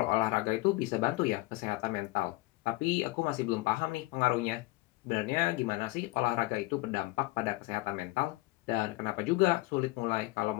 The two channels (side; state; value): right; quieter; 21.2 dB